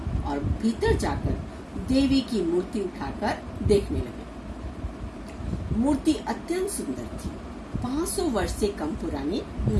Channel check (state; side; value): identical; both; correlation 1.00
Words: और भीतर जाकर देवी की मूर्ति उठाकर देखने लगे। मूर्ति अत्यंत सुंदर थी, 500 वर्ष से कम पुरानी